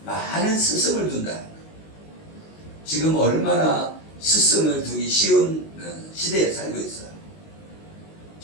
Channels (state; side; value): late; right; 19 ms